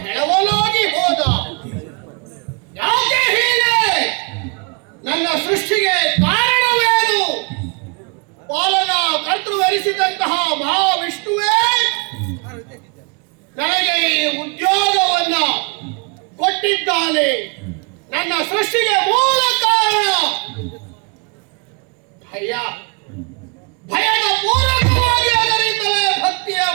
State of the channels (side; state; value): left; quieter; 33.0 dB